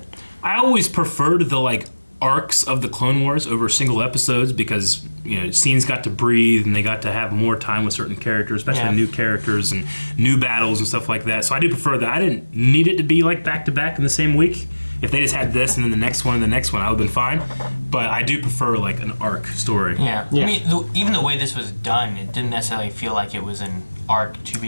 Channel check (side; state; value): both; inverted; correlation -1.00